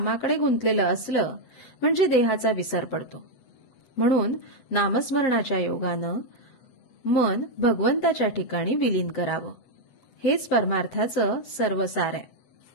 गुंतलेलं असलं म्हणजे देहाचा विसर पडतो। म्हणून नामस्मरणाच्या योगानं मन भगवंताच्या ठिकाणी विलीन करावं। हेच परमार्थाचं सर्वसार आहे।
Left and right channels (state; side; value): late; right; 8.0 ms